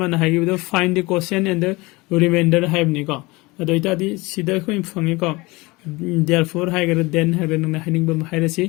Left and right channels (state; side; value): quieter; right; 23.1 dB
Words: हाइगिबो find the quotient and the remainder हाइबनि को अदो इतादि सिदा खोइ फंगे को therefore हाइगर देन हाइगर नंग हाइनिंग बम हाइरसि